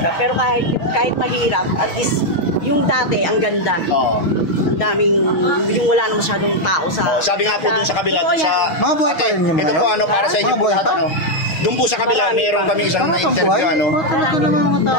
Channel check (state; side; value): late; right; 6.3 ms